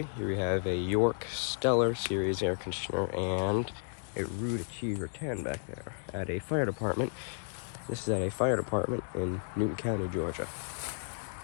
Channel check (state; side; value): silent; right; digital silence